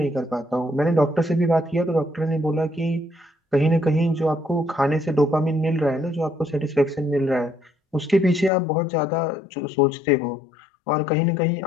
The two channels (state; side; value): drops out; right; at 8.5 s